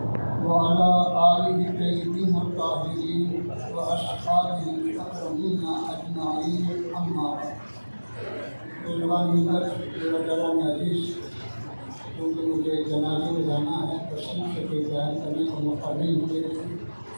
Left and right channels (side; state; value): both; inverted; correlation -1.00